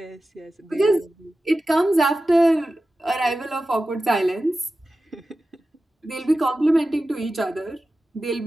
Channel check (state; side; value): normal; both; correlation 0.94